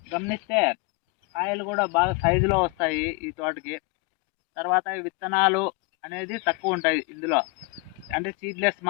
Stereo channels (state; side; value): quieter; right; 28.4 dB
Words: గమనిస్తే కాయలు కూడా బాగా సైజులో వస్తాయి ఈ తోటకి. తర్వాత విత్తనాలు అనేది తక్కువ ఉంటాయి ఇందులో, అంటే సీడ్లెస్